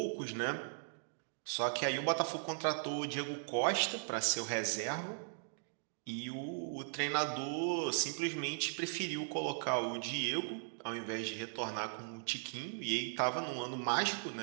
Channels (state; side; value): silent; left; digital silence